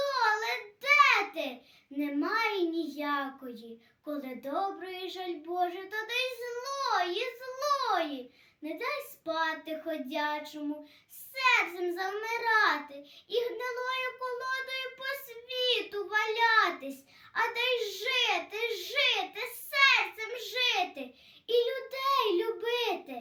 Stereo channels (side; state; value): both; identical; correlation 1.00